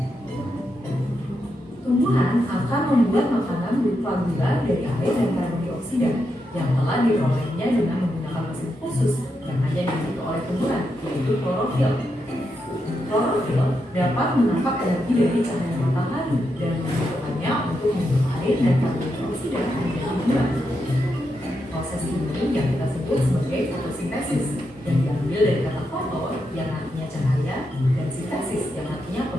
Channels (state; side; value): normal; both; correlation 0.84